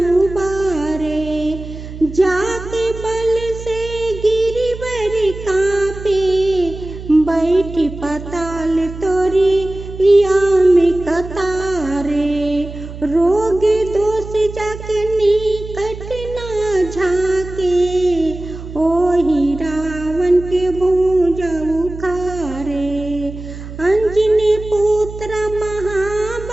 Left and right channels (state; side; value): noise; right; hum, 12 dB below the sound